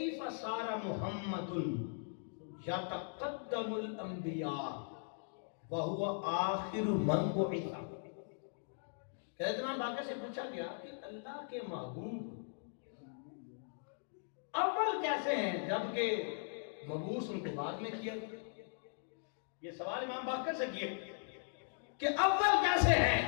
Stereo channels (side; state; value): right; silent; digital silence